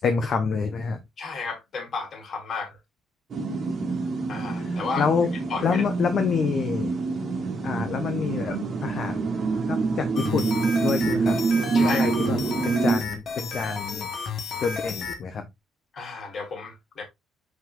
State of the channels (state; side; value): normal; both; correlation 0.76